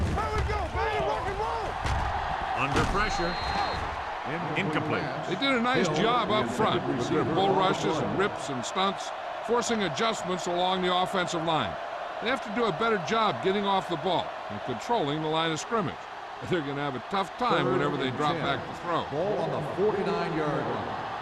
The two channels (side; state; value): both; identical; correlation 1.00